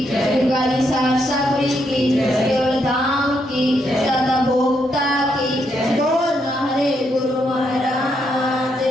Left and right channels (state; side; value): normal; both; correlation 0.78